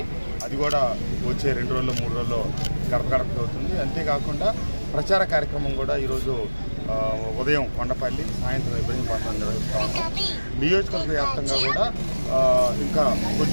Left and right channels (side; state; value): both; inverted; correlation -1.00